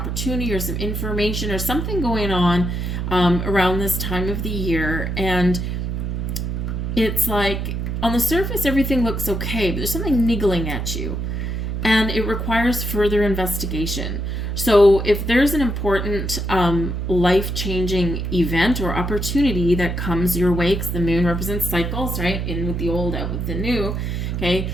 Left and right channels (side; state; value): right; noise; hum, 2 dB below the sound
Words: or some information or something going on around this time of the year. And it's like, on the surface, everything looks okay, but there's something niggling at you, and it requires further investigation. So if there's an important life-changing event or opportunity that comes your way, because the moon represents cycles, right? In with the old, out with the new, okay?